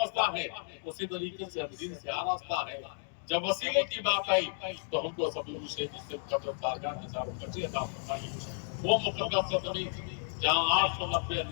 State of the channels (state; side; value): silent; right; digital silence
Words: ہیں، اسی طریقے سے ہم دین سے آراستہ ہیں۔ جب وسیلے کی بات آئی تو ہم کو سبھی مجھے جس سے قدر بارگاہ کے ساتھ بچے عطا فرمائی، وہ مقدس زمین جہاں 890